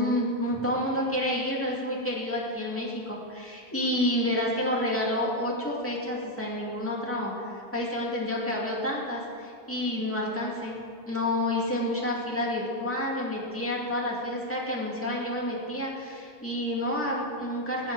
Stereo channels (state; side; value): normal; both; correlation 0.03